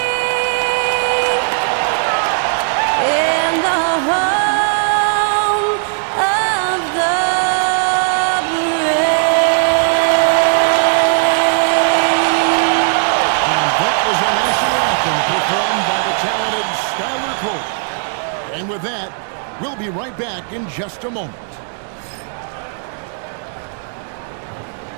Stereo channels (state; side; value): silent; left; 68 dB below the other